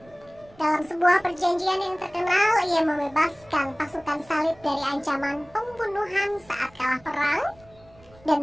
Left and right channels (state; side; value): noise; right; rumble, 27 dB below the sound